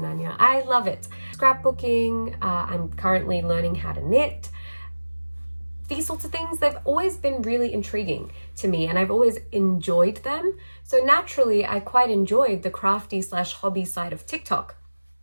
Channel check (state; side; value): inverted; both; correlation -1.00